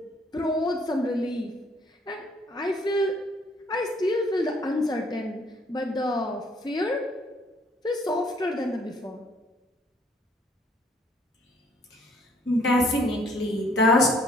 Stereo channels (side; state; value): both; normal; correlation 0.62